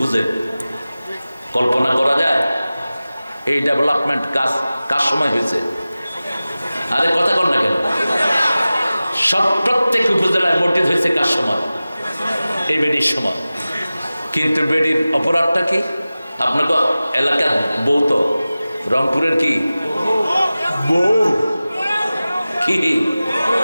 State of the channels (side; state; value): both; inverted; correlation -0.97